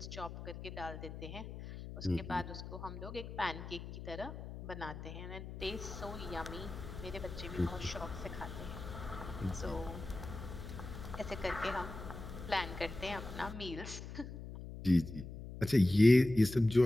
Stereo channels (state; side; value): noise; left; hum, 10 dB below the sound